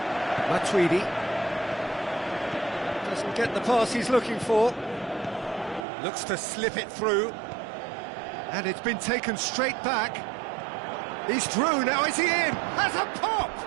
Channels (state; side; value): drops out; left; at 5.9 s